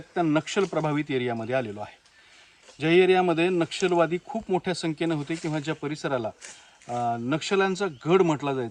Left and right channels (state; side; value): identical; both; correlation 1.00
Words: नक्षल प्रभावित एरियामध्ये आलेलो आहे. ज्या एरियामध्ये नक्षलवादी खूप मोठ्या संख्येने होते किंवा ज्या परिसराला नक्षल्यांचा गड म्हटला